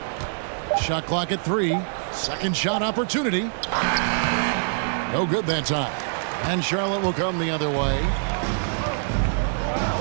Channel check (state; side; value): silent; left; digital silence